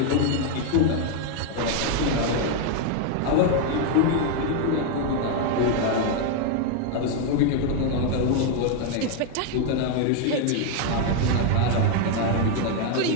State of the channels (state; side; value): different; both; correlation 0.01